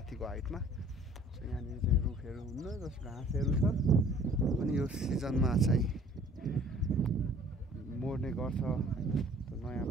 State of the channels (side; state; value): both; normal; correlation 0.52